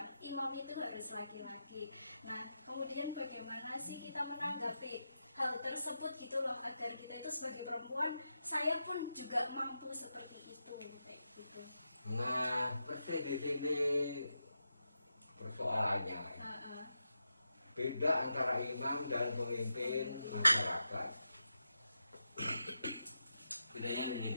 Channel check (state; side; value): inverted; both; correlation -0.87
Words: imam itu harus laki-laki. Nah kemudian bagaimana sih kita menanggapi hal tersebut gitu loh, agar kita itu sebagai perempuan, saya pun juga mampu seperti itu kayak gitu. Nah persis di sini persoalannya beda antara imam dan pemimpin masyarakat. Bedanya